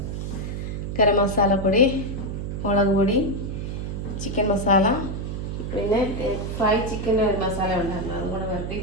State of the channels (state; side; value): noise; right; hum, 4 dB below the sound